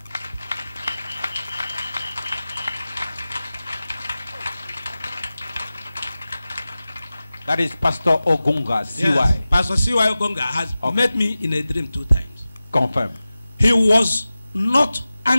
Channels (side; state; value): both; inverted; correlation -0.96